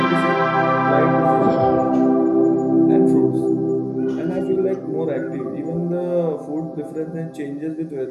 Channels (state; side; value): identical; both; correlation 1.00